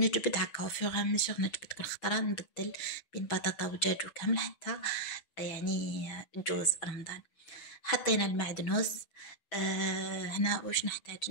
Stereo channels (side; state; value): right; late; 6.1 ms